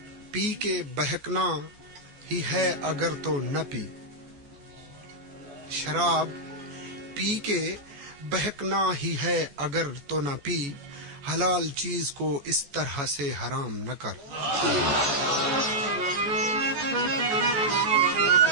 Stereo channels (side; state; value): left; late; 14 ms